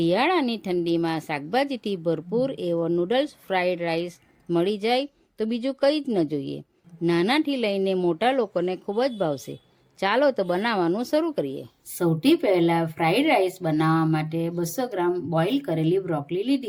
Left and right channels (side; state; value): both; identical; correlation 1.00